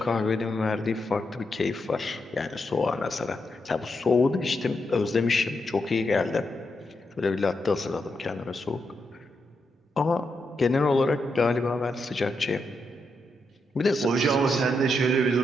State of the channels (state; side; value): normal; both; correlation 0.83